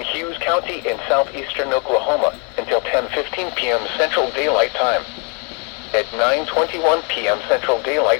Hughes County in southeastern Oklahoma until 10:15 p.m. Central Daylight Time. At 9:21 p.m. Central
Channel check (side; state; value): right; quieter; 36.6 dB